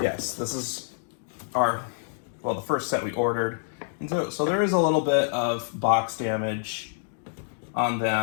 yes, this is our, well, the first set we ordered. And so there is a little bit of box damage on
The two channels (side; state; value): right; silent; digital silence